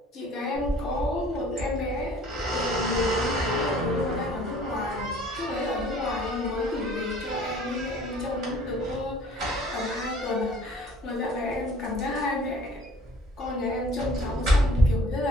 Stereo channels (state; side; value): normal; both; correlation 0.52